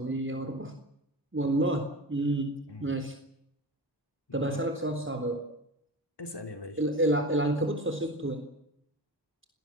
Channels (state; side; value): normal; both; correlation 0.30